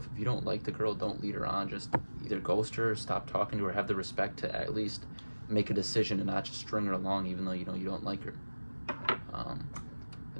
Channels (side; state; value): both; inverted; correlation -1.00